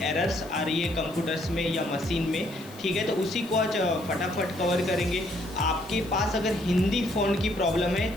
एरर्स आ रही है कंप्यूटर्स में या मशीन में। ठीक है, तो उसी को आज फटाफट कवर करेंगे। आपके पास अगर हिंदी फ़ॉन्ट की प्रॉब्लम है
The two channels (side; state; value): left; noise; hiss, 21 dB below the sound